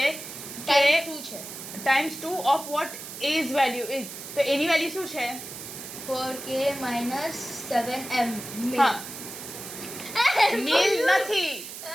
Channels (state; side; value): noise; right; hiss, 11 dB below the sound